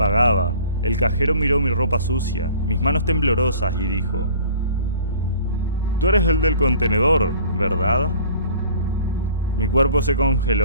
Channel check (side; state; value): both; inverted; correlation -0.49